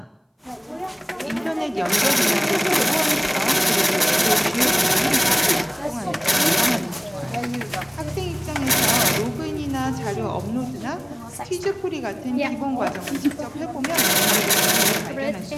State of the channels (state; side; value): identical; both; correlation 1.00